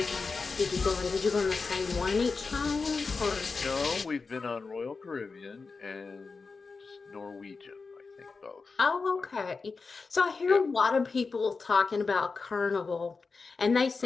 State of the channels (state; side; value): quieter; right; 4.4 dB